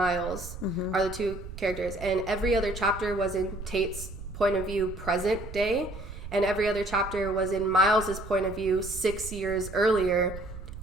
are the two characters, and every other chapter was in Tate's point of view present day, and every other chapter was in Miles's point of view 6 years earlier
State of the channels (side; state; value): right; noise; rumble, 11 dB below the sound